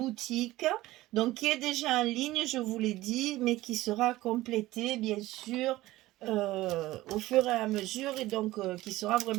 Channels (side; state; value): left; quieter; 17.2 dB